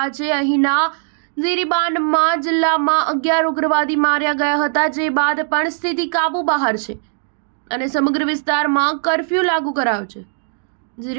છે. અહીંના ઝિરીબાનમાં જિલ્લામાં 11 ઉગ્રવાદી માર્યા ગયા હતા, જે બાદ પણ સ્થિતિ કાબુ બહાર છે અને સમગ્ર વિસ્તારમાં કર્ફ્યુ લાગુ કરાયો છે.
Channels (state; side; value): silent; left; digital silence